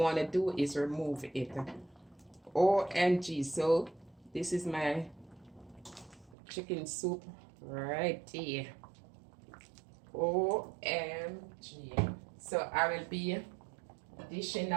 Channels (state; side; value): drops out; left; at 6.4 s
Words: to do is remove it. OMG. So this is my chicken soup right here. OMG. So I will be dishing